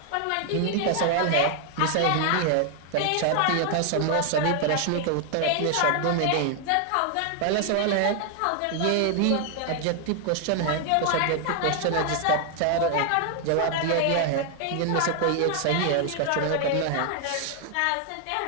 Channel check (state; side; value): different; both; correlation 0.00